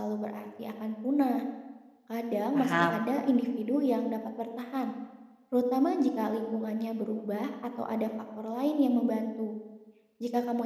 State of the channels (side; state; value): both; identical; correlation 1.00